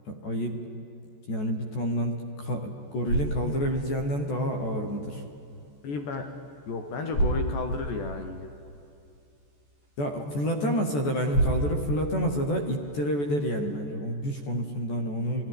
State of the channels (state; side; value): late; right; 14 ms